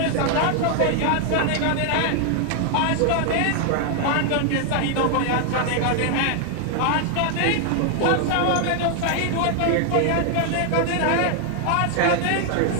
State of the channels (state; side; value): different; both; correlation 0.00